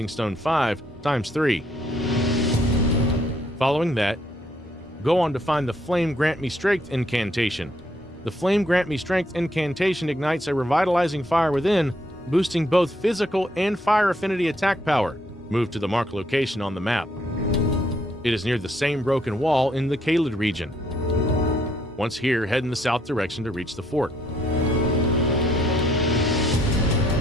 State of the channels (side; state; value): both; normal; correlation 0.70